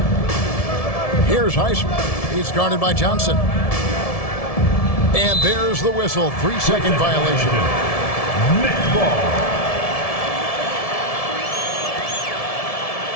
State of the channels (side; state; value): right; late; 1.7 ms